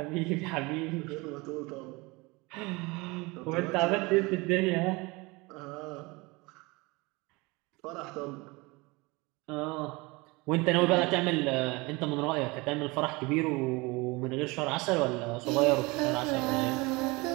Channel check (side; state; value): left; quieter; 24.8 dB